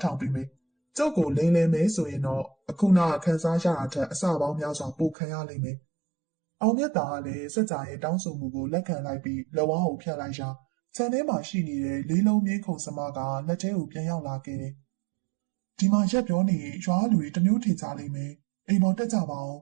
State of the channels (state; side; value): drops out; left; at 5.2 s